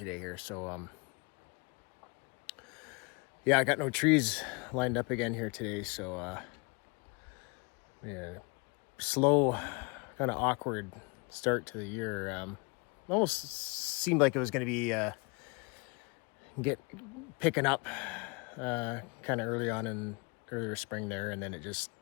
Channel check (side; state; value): right; quieter; 29.8 dB